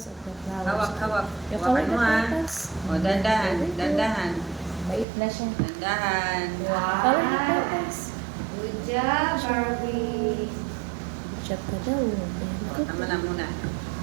of the flowers. Hawak, hawak. Yung Hawakan color mo na ha. petals. O, dandahan. Dandahan. Bait na siya. Dandahan. Color na petals. Good job, Barbie. Chat ka daw. O, tama na muna.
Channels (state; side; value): drops out; left; at 5.1 s